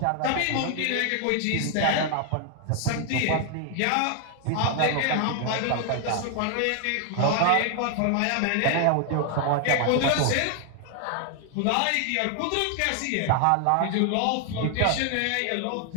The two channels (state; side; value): different; both; correlation 0.00